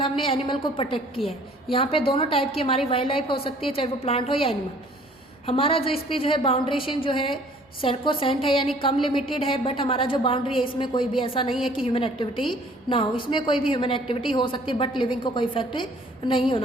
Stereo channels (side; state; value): both; normal; correlation 0.55